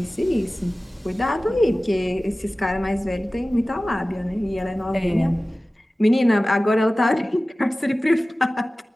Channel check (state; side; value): normal; both; correlation 0.97